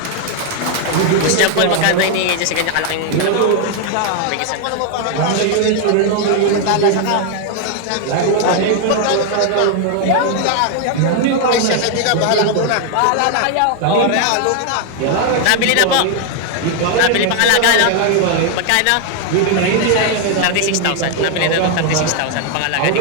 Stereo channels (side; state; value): both; different; correlation 0.00